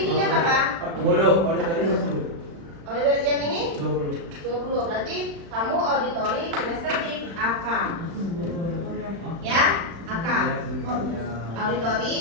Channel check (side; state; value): left; late; 36 ms